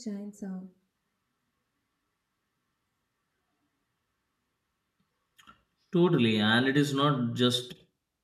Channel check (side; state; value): both; identical; correlation 1.00